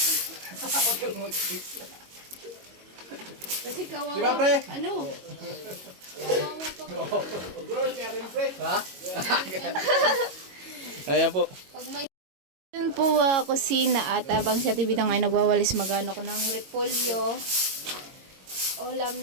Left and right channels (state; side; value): late; left; 22 ms